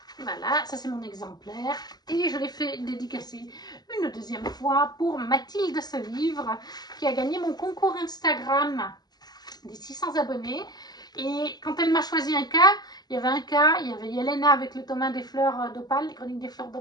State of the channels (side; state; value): right; late; 0.20 ms